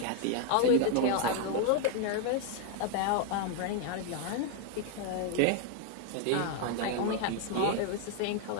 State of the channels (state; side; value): different; both; correlation 0.01